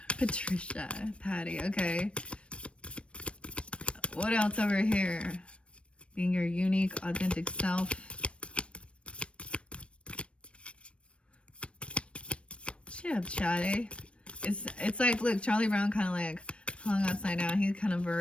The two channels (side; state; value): right; late; 0.060 ms